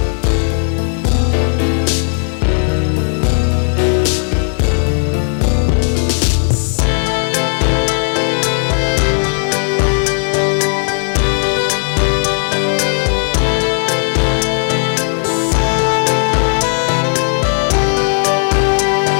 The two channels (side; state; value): right; silent; digital silence